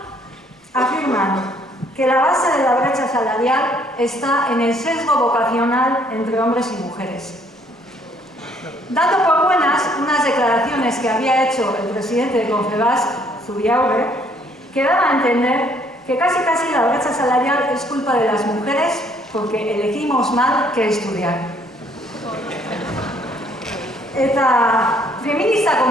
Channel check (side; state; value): both; normal; correlation 0.64